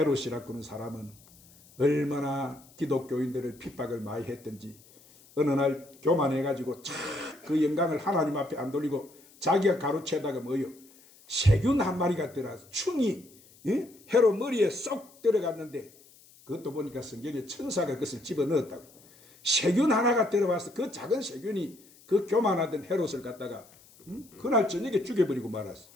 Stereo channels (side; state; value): left; noise; hiss, 26 dB below the sound